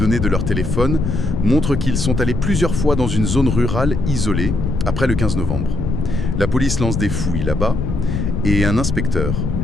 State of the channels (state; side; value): noise; left; rumble, 2 dB below the sound